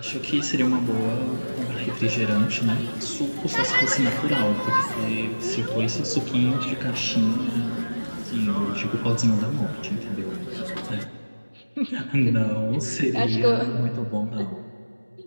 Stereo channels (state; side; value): inverted; both; correlation -1.00